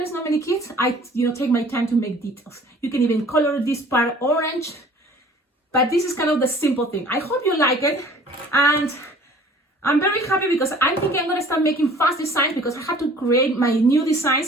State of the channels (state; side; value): normal; both; correlation 0.50